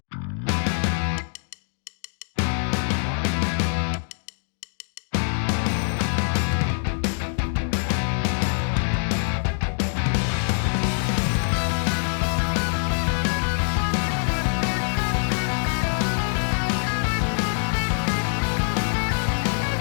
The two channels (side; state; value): right; silent; 62 dB below the other